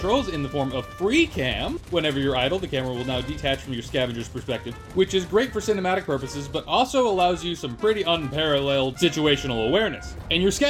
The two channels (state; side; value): identical; both; correlation 1.00